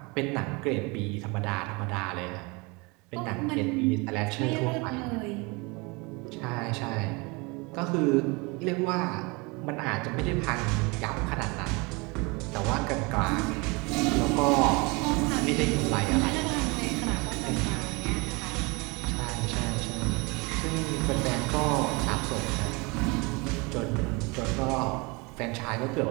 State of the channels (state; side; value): quieter; left; 27.3 dB